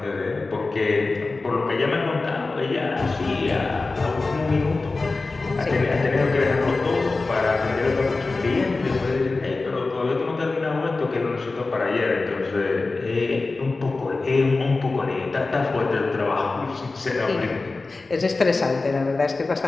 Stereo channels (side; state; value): right; quieter; 3.6 dB